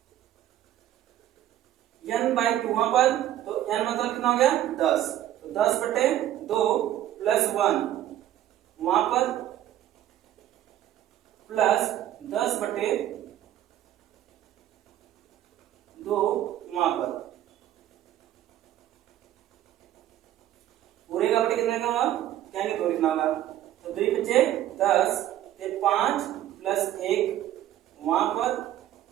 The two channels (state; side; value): quieter; left; 12.6 dB